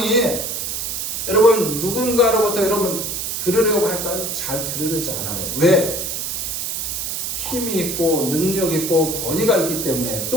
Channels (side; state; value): right; noise; hiss, 3 dB below the sound